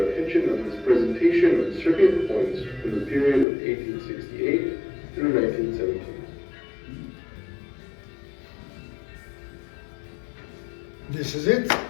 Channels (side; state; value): right; drops out; at 3.5 s